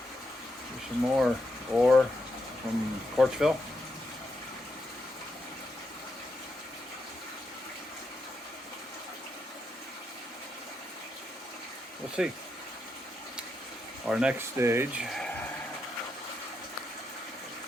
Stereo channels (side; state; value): both; normal; correlation 0.82